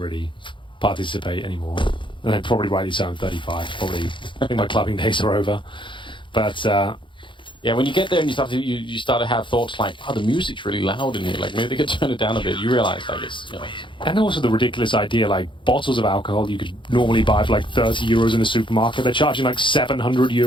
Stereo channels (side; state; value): right; late; 0.24 ms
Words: participate anymore. And then probably rightly so, I'm 35. Probably, I think my clubbing days are over. But, yeah, when you get there and you start to have thoughts like, oh, the music's really loud in here. Like, maybe they could turn it down a bit. You realize, like, it's, you know. And also the ridiculous idea, like, bottles of alcohol you could normally buy for like 30 euros in a supermarket. They're charging like 700